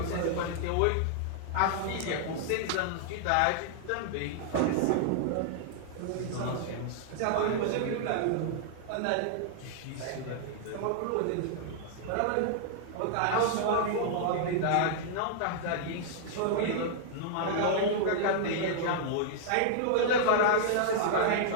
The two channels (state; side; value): different; both; correlation -0.01